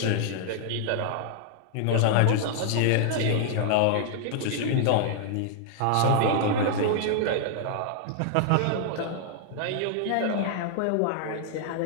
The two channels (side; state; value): both; different; correlation -0.01